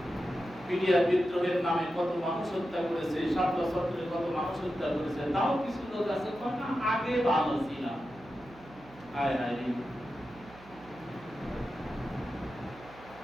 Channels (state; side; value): noise; right; hum, 21 dB below the sound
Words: মিডিয়া বিদ্রোহের নামে কত মানুষ হত্যা করেছে, 7 বছর ধরে কত মানুষ হত্যা করেছে। তাও কিছু লোক আছে কয় না আগে ভালো ছিলাম। হায় হায় রে,